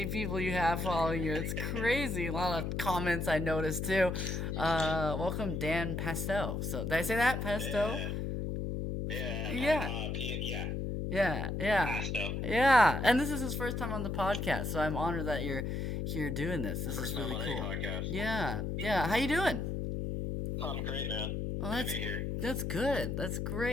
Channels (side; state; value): left; noise; hum, 2 dB below the sound